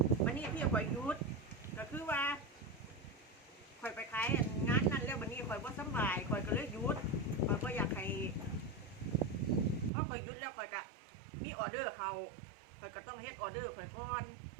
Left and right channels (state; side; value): drops out; left; at 9.9 s